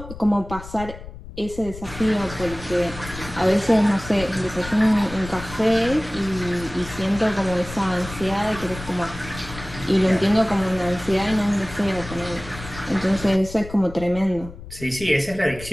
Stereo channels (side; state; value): left; noise; rumble, 14 dB below the sound